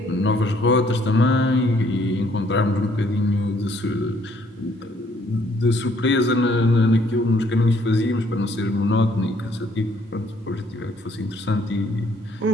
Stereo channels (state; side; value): normal; both; correlation 0.65